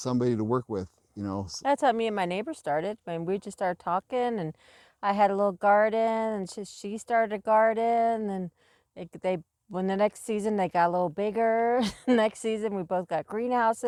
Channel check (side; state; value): both; identical; correlation 1.00